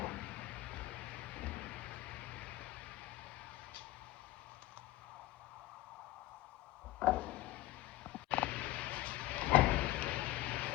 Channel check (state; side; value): quieter; right; 17.0 dB